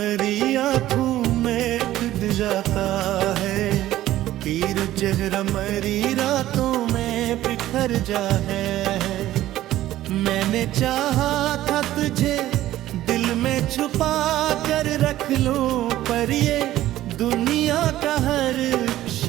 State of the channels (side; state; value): left; quieter; 14.3 dB